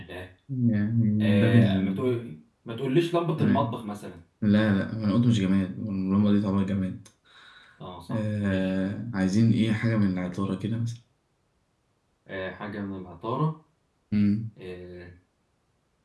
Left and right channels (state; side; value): identical; both; correlation 1.00